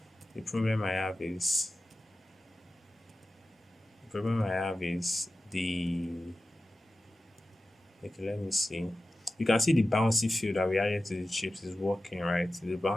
The problem I have is the, okay, let me see. You can see the bouncy field that we added to the chips is working, right? The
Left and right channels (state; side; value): normal; both; correlation 0.94